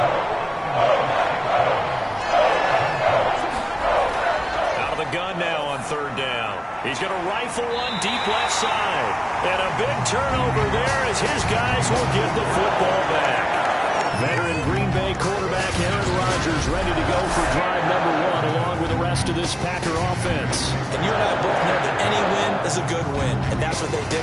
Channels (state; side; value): identical; both; correlation 1.00